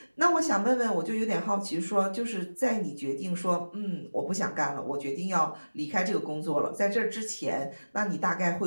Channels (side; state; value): both; inverted; correlation -1.00